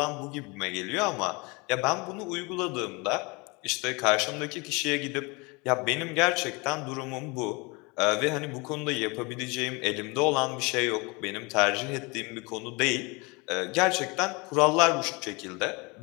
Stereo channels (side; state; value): right; quieter; 27.6 dB